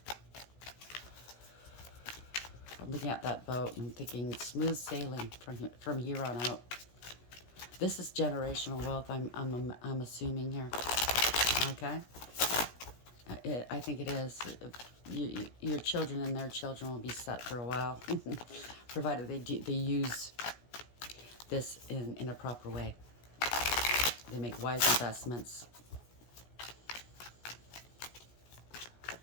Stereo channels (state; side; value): late; right; 17 ms